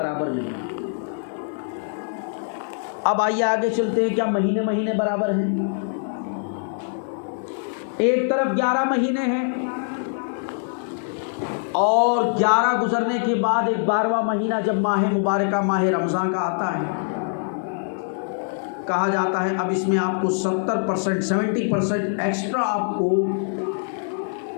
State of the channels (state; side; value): silent; right; digital silence